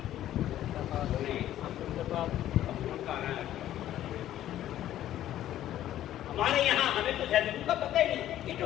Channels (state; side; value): quieter; right; 12.6 dB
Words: ہمارے یہاں ہمیں تو زیتون کا پتہ ہی نہیں کہ جو